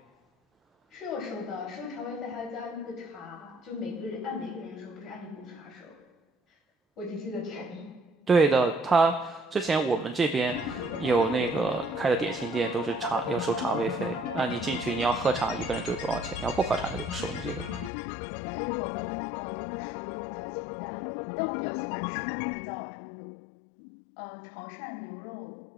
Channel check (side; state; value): right; drops out; at 17.9 s